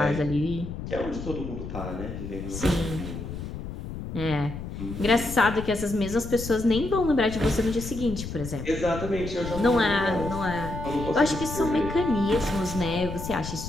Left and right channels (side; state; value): left; noise; rumble, 8 dB below the sound